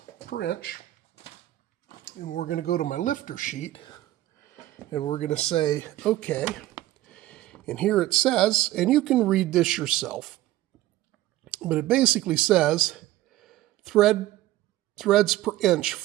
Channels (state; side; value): quieter; left; 15.4 dB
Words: per inch and we're going to go to my lifter sheet and we're going to say, okay, and here it says, and you can read this yourself, but it basically says threads per inch